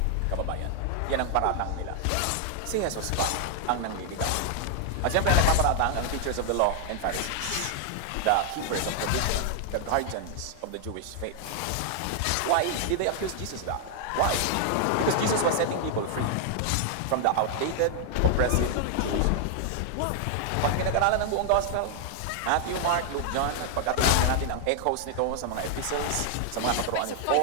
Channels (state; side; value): different; both; correlation 0.00